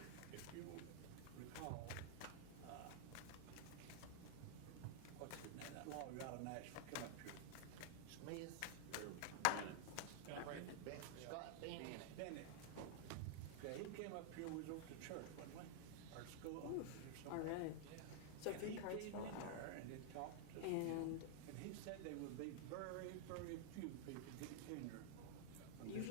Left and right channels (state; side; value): different; both; correlation -0.01